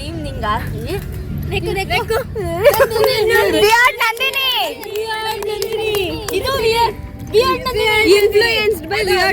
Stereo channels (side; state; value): both; identical; correlation 1.00